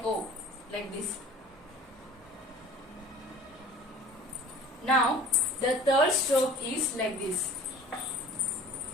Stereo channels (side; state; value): both; normal; correlation 0.45